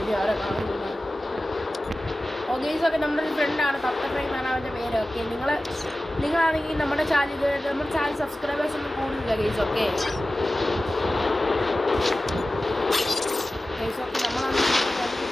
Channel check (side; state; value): both; normal; correlation 0.96